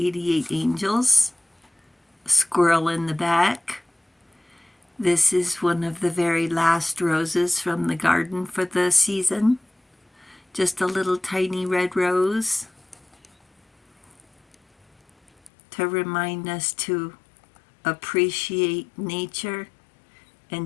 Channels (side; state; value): right; drops out; at 15.5 s